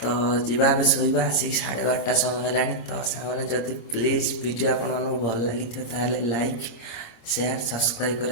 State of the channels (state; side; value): late; right; 26 ms